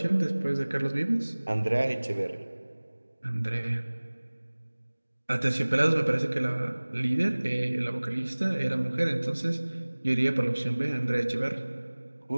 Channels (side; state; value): both; inverted; correlation -1.00